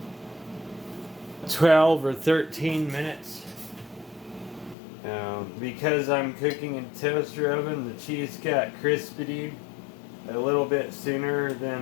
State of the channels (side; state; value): right; drops out; at 4.8 s